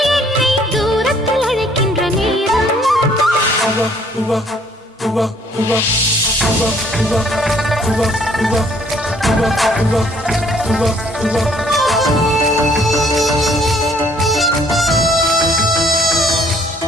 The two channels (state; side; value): normal; both; correlation 0.62